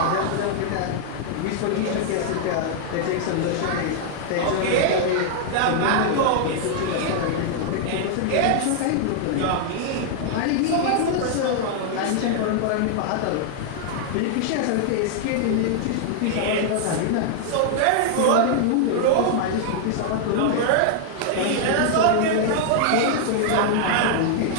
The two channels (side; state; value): both; different; correlation 0.00